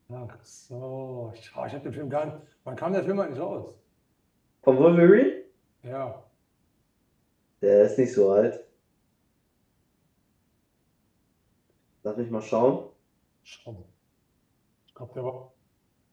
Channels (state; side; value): identical; both; correlation 1.00